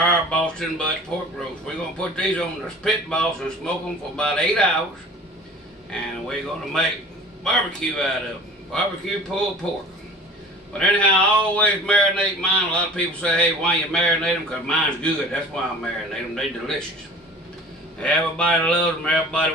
Boston butt pork roast. We're going to put these on the pit boss and smoke them for about 8 hours. And we're going to make barbecue out of them. Barbecue pulled pork. But anyhow, I always marinate mine. A lot of people say, hey, why you marinate them? Because mine's good. That's why I marinate them. They're delicious. Everybody loves them. Everybody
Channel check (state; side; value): normal; both; correlation 0.43